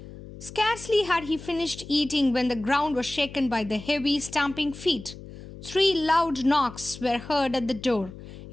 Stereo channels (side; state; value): left; noise; hum, 15 dB below the sound